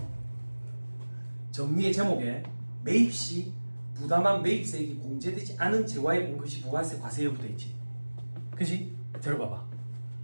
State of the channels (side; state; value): both; inverted; correlation -1.00